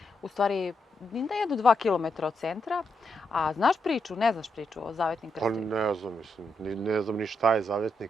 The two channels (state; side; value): normal; both; correlation 0.81